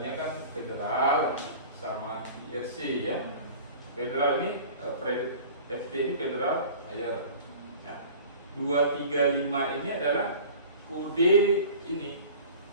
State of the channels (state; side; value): inverted; both; correlation -0.42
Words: kan Federal sama IRC ya. Federal ini FT ini Federal Air. Ya. 235 ini adalah kode ini